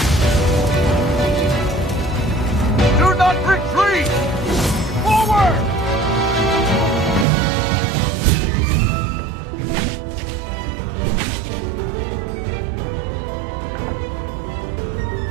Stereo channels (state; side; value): drops out; left; at 7.2 s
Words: Do not retreat! Forward!